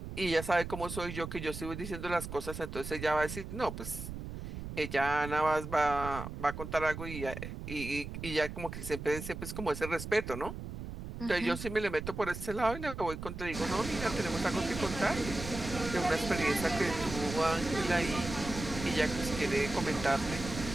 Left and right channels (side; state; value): right; noise; rumble, 8 dB below the sound